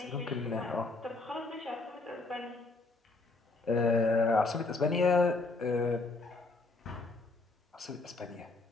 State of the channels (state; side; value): quieter; right; 3.5 dB